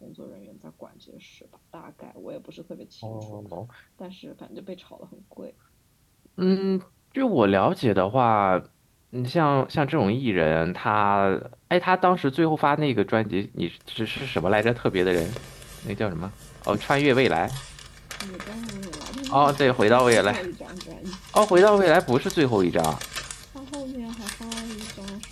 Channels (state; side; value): identical; both; correlation 1.00